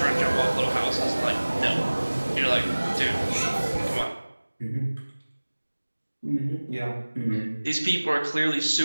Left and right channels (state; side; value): inverted; both; correlation -1.00